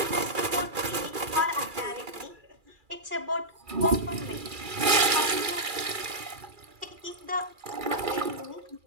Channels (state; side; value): late; left; 2.3 ms